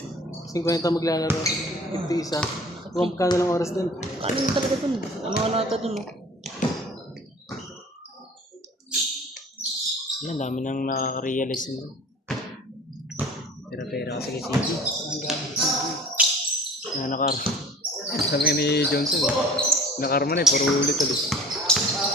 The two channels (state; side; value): normal; both; correlation 0.46